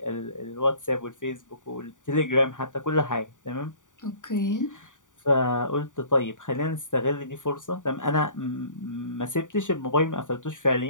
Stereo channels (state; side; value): late; right; 0.87 ms